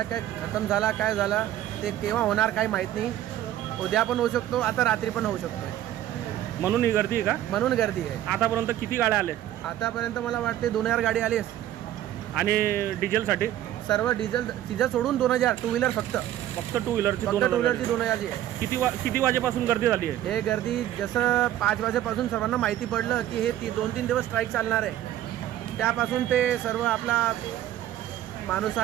काय खतम झाला काय झाला ते केव्हा होणार काही माहीत नाही. उद्या पण होऊ शकतो, आता रात्री पण होऊ शकतो. म्हणून ही गर्दी आहे का? म्हणून गर्दी आहे. आतापर्यंत किती गाड्या आल्या? आतापर्यंत मला वाटते 2000 गाडी आली आहे. आणि डिझेलसाठी सर्व डिझेल सोडून 2000 टू व्हीलर फक्त टू व्हीलरची 2000 जी आहे. किती वाजेपासून गर्दी झाली आहे? हे गर्दी जसं 5 वाजेपासून सर्वांना माहिती पडलं की हे 2-3 दिवस स्ट्राईक चालणार आहे, त्यापासून ते सर्व आपला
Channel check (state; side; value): quieter; left; 12.6 dB